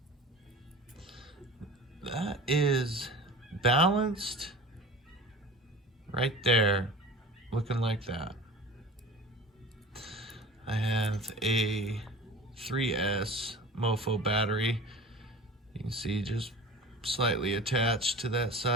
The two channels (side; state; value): both; normal; correlation 0.38